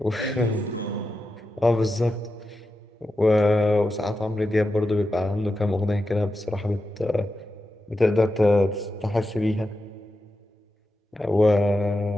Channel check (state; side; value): normal; both; correlation 0.89